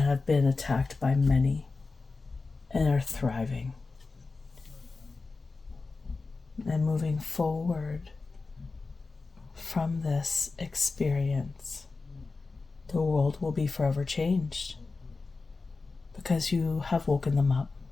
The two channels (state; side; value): quieter; right; 4.0 dB